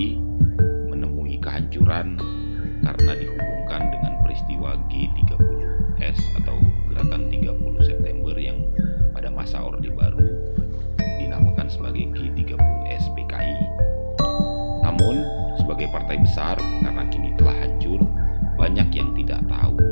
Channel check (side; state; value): both; inverted; correlation -1.00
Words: menemui kehancuran karena dihubungkan dengan peristiwa G30S atau Gerakan 30 September yang pada masa Orde Baru dinamakan sebagai G30S PKI. Namun, sebagai partai besar, karena kini telah hancur, banyak yang tidak tahu